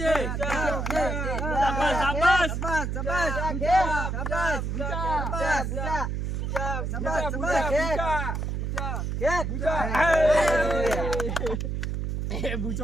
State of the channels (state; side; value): noise; right; hum, 2 dB below the sound